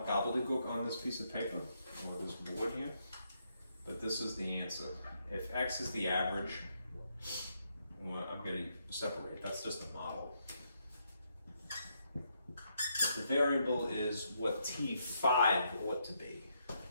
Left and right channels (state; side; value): inverted; both; correlation -0.77